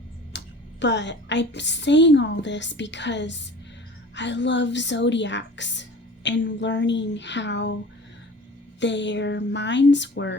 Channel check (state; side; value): normal; both; correlation 0.42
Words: But I'm saying all this because I love zodiacs and learning how their minds